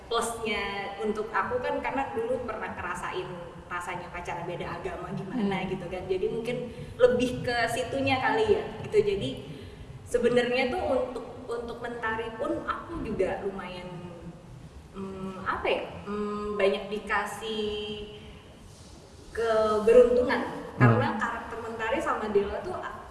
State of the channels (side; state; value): both; identical; correlation 1.00